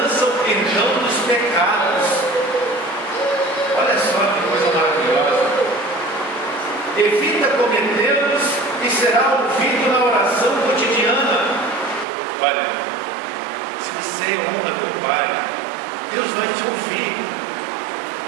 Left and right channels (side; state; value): left; drops out; at 12.1 s